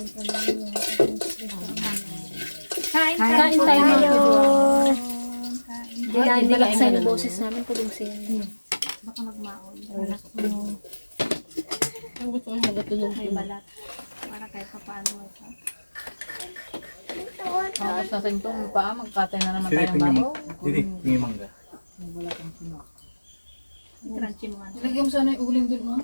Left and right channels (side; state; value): both; inverted; correlation -1.00